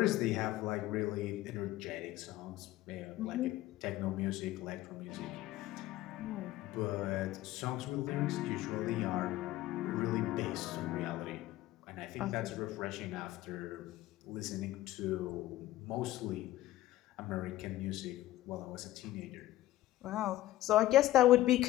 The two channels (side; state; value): right; quieter; 15.5 dB